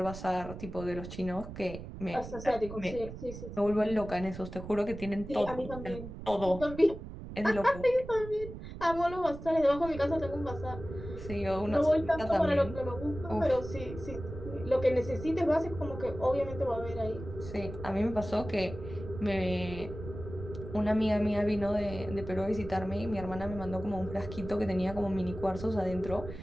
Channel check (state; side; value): noise; right; rumble, 11 dB below the sound